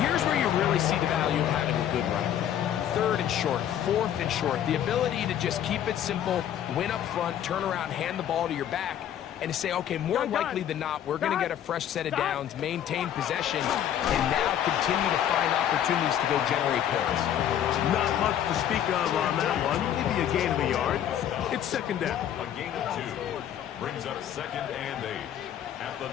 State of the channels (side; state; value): right; quieter; 10.3 dB